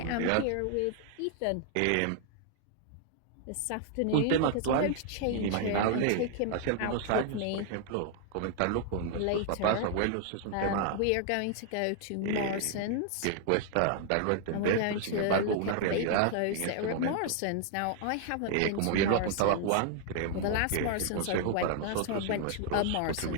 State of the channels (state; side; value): different; both; correlation 0.00